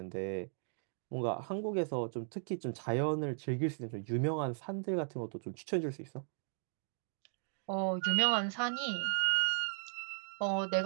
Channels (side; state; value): left; silent; digital silence